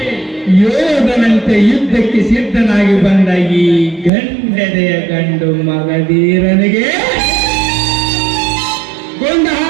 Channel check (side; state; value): left; drops out; at 4.1 s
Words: ಯೋಧನಂತೆ ಯುದ್ಧಕ್ಕೆ ಸಿದ್ಧನಾಗಿ ಬಂದ ಈ ಗಂಡದೆಯ ಗಂಡು ಮಗಧೀರನಿಗೆ ಕೊಂಡ